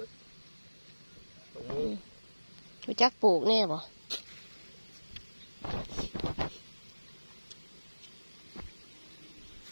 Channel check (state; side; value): inverted; both; correlation -1.00